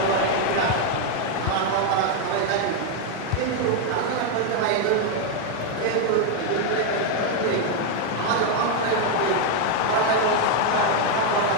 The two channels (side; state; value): both; different; correlation 0.01